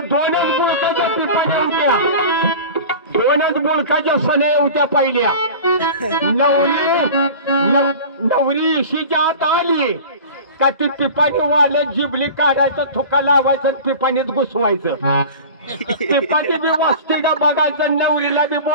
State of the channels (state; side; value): inverted; both; correlation -0.36